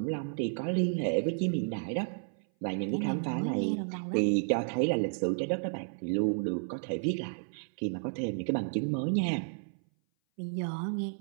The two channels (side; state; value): left; silent; 56 dB below the other